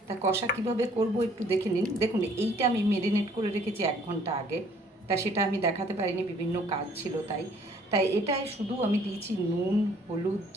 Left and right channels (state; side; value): normal; both; correlation 0.60